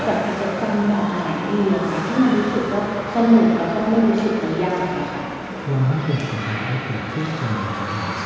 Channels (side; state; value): both; identical; correlation 1.00